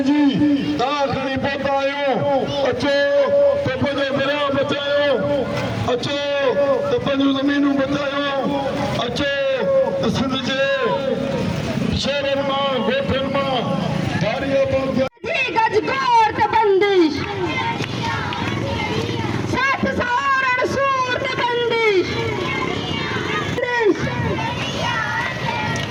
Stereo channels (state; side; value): identical; both; correlation 1.00